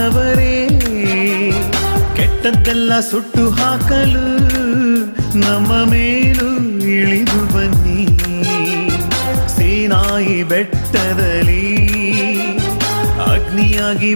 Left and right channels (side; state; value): both; inverted; correlation -1.00